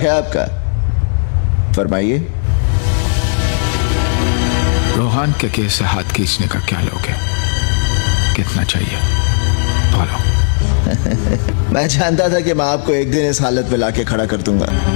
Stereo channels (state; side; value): silent; right; 66 dB below the other